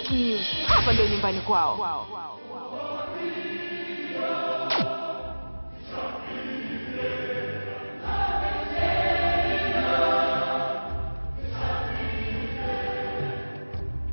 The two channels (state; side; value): inverted; both; correlation -1.00